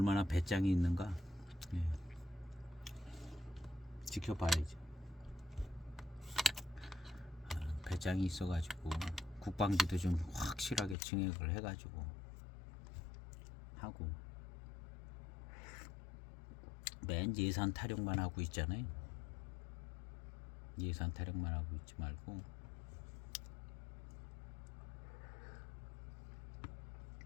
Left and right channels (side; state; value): right; drops out; at 11.0 s